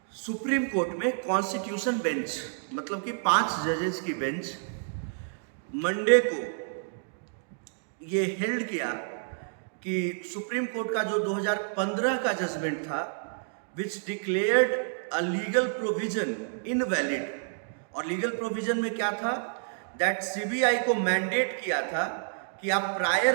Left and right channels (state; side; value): silent; left; digital silence